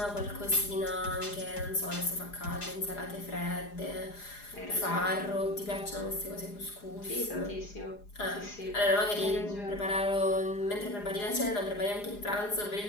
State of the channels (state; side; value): late; right; 4.9 ms